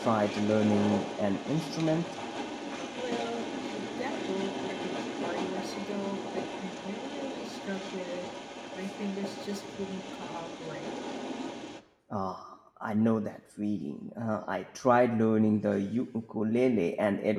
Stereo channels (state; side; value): identical; both; correlation 1.00